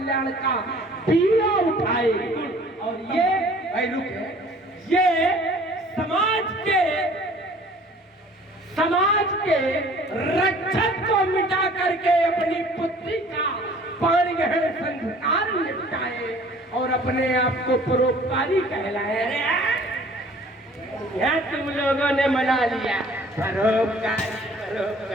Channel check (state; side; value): normal; both; correlation 0.52